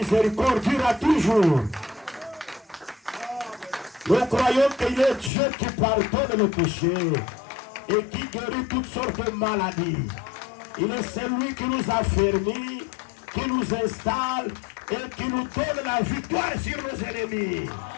durera toujours. Nous croyons qu'il est Dieu qui pardonne le péché et qui guérit toutes sortes de maladies. Il est celui qui nous affermit, qui nous installe et qui nous donne la victoire sur nos ennemis.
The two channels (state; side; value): drops out; right; at 5.3 s